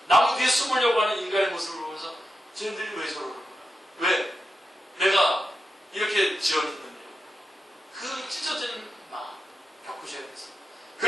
나무 뒤에 숨으려고 하는 인간의 모습을 보면서 쟤네들이 왜 저러는 거야? 왜? 내가 이렇게 지어졌는데 그 찢어지는 마음 겪으셔야 돼서.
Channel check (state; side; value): normal; both; correlation 0.88